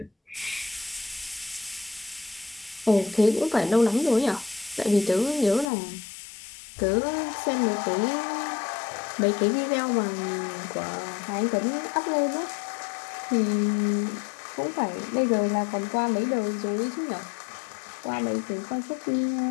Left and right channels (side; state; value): right; drops out; at 5.7 s